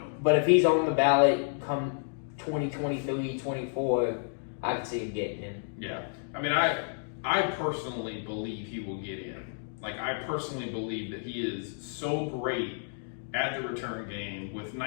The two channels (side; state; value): right; silent; digital silence